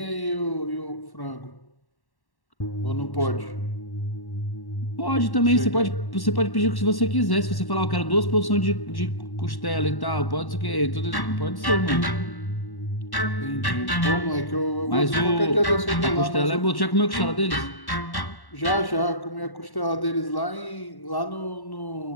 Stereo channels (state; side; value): late; right; 1.1 ms